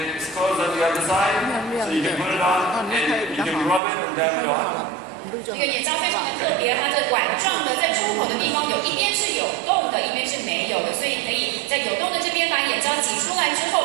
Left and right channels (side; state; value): left; drops out; at 3.8 s